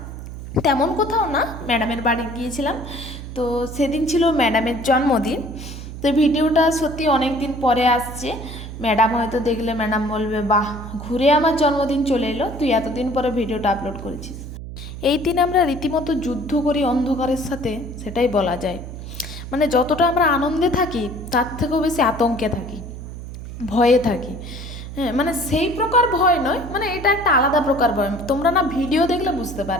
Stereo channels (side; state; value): right; noise; hum, 10 dB below the sound